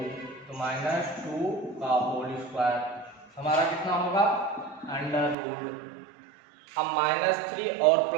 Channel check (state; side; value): drops out; left; at 5.4 s